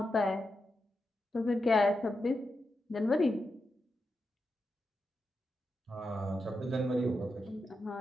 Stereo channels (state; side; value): normal; both; correlation 0.87